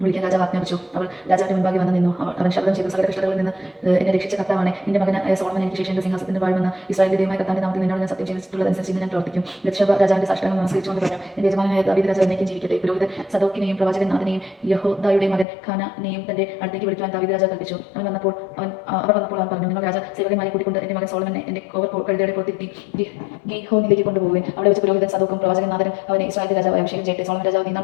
വിളിക്കാൻ രാജാവ് ആജ്ഞാപിച്ചു. അവൾ രാജാവിന്റെ മുൻപാകെ വന്നു നിന്നു. അവൻ ശബ്ദം ചെയ്തു, സകല കഷ്ടതകളിൽ നിന്ന് എന്നെ രക്ഷിച്ച കർത്താവാണ്. നിന്റെ മകനായ സോളമൻ എനിക്ക് ശേഷം എന്റെ സിംഹാസനത്തിൽ വാഴുമെന്ന് ഇസ്രായേലിന്റെ ദൈവമായ കർത്താവിന്റെ നാമത്തിൽ നിന്നോട് ഞാൻ സത്യം ചെയ്തിട്ടുള്ളതനുസരിച്ച് ഇന്ന് ഞാൻ പ്രവർത്തിക്കും. ബത്ശേബ രാജാവിന്റെ സാഷ്ടാംഗം നമസ്കരിച്ചുകൊണ്ട് പറഞ്ഞു, എന്റെ യജമാനനായ ദാവീദ് രാജാവ് എന്നേക്കും ജീവിക്കട്ടെ. പുരോഹിതൻ സദോക്കിനെയും പ്രവാചകൻ നാഥനെയും യഹോദായുടെ മകൻ ഖാനാനെയും തന്റെ അടുത്തേക്ക് വിളിക്കുവാൻ ദാവീദ് രാജാവ് കൽപ്പിച്ചു. അവർ വന്നപ്പോൾ അവൻ പറഞ്ഞു, നിങ്ങൾ സേവകന്മാരെ കൂട്ടിക്കൊണ്ട് എന്റെ മകൻ സോളമനെ എന്റെ കഴുതയുടെ പുറത്തിരുത്തി ഗീഹോനിലേക്ക് കൊണ്ടുപോകുകയും അവിടെ വെച്ച് പുരോഹിതൻ സദോക്കും പ്രവാചകൻ നാഥനും അവനെ ഇസ്രായേലിന്റെ രാജാവ് അഭിഷേകം ചെയ്യട്ടെ. സോളമൻ രാജാവ് നീന്നാൽ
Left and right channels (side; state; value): right; drops out; at 15.5 s